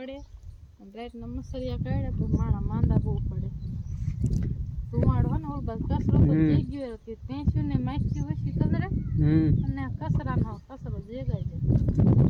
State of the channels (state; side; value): identical; both; correlation 1.00